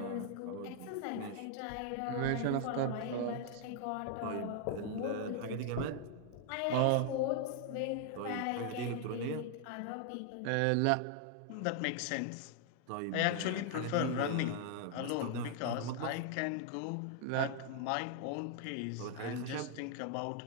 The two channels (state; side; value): different; both; correlation 0.00